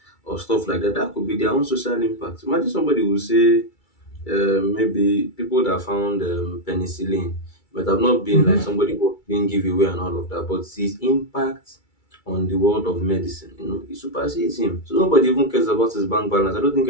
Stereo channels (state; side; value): late; right; 2.3 ms